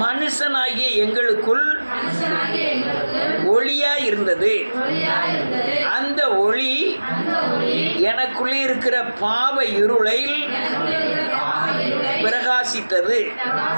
மனுஷனாகிய எங்களுக்குள் ஒளியாய் இருந்தது. அந்த ஒளி எனக்குள்ளே இருக்கிற பாவ இருளை பிரகாசித்தது.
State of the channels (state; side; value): inverted; both; correlation -1.00